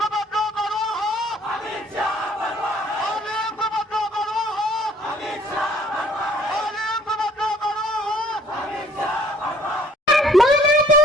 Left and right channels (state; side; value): normal; both; correlation 0.58